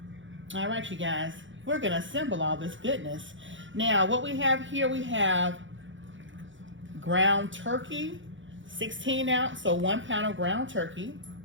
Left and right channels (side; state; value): left; late; 0.56 ms